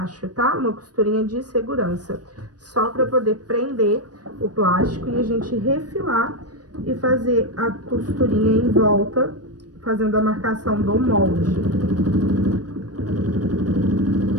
tá? Uma costurinha de segurança, só para poder prender o plástico e a gente refilar e fazer a costurinha em volta, fazendo a marcação do molde.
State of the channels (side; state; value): left; late; 0.69 ms